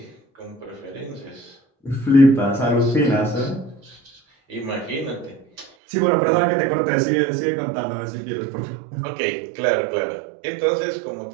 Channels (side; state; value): left; drops out; at 5.7 s